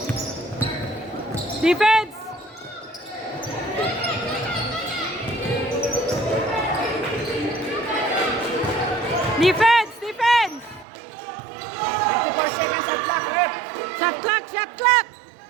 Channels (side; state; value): left; drops out; at 10.9 s